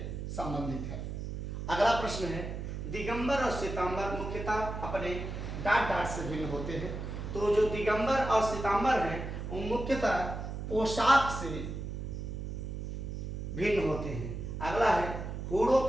संबंधित है। अगला प्रश्न है, दिगंबर और श्वेतांबर मुख्यतः अपने डाट डाट से भिन्न होते हैं। तो जो दिगंबर और श्वेतांबर हैं वो मुख्यतः पोशाक से भिन्न होते हैं। अगला है, हूणों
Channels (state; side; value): noise; right; hum, 6 dB below the sound